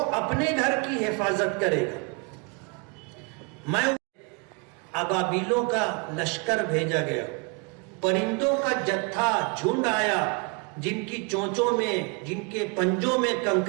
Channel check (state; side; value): quieter; left; 32.5 dB